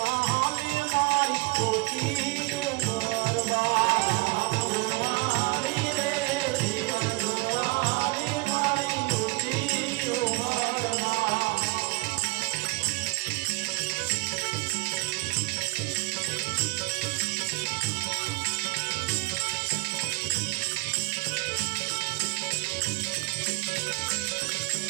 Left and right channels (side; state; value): left; quieter; 27.9 dB